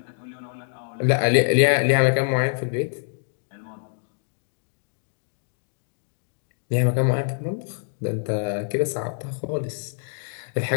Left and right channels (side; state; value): right; silent; digital silence